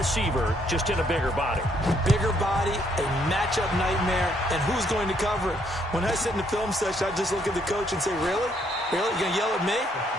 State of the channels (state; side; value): normal; both; correlation 0.70